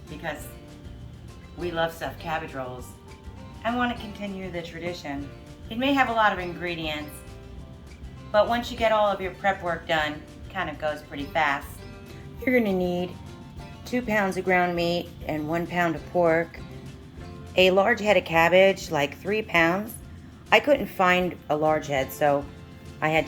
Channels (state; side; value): identical; both; correlation 1.00